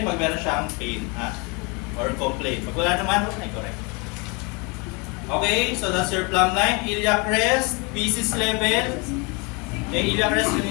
pag meron siyang pain, ha? Or complaint. Pag wala naman, huwag na i-correct. Okay, so that's your plumb line. Iliac crest, pieces level. Iliac crest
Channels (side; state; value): right; quieter; 30.3 dB